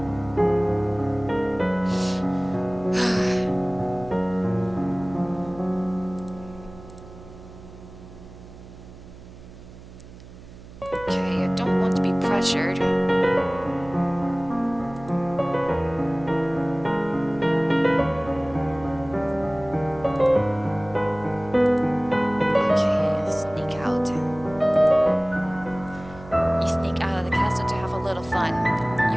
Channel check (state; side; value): noise; right; hum, 18 dB below the sound